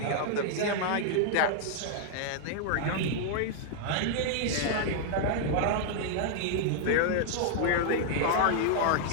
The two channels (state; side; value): different; both; correlation 0.00